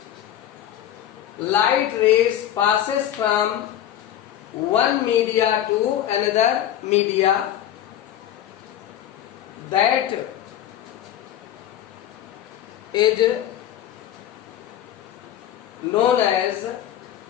light rays passes from one media to another media, that is known as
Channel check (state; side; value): quieter; right; 11.4 dB